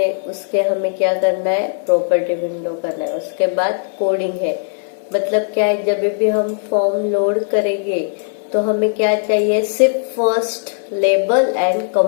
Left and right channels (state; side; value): silent; right; digital silence